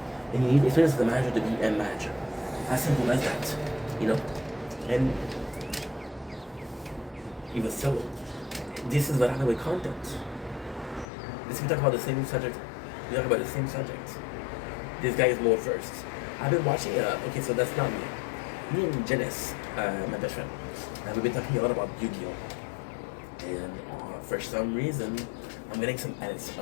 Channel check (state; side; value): drops out; right; at 11.1 s